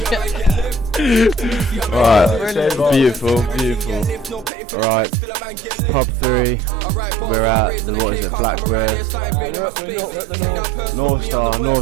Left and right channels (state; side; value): drops out; left; at 4.5 s